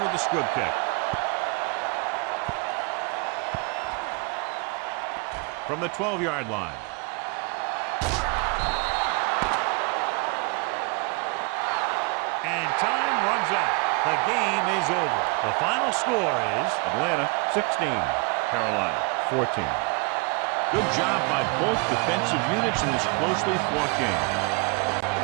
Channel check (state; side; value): quieter; left; 30.0 dB